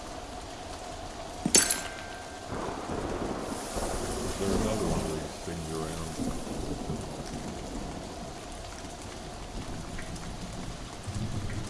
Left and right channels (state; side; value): identical; both; correlation 1.00